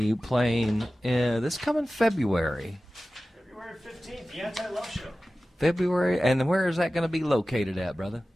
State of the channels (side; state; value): both; normal; correlation 0.96